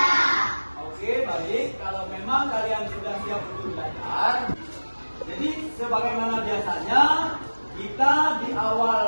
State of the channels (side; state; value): both; inverted; correlation -1.00